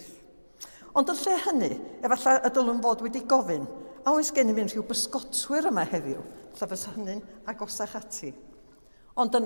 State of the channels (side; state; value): both; inverted; correlation -1.00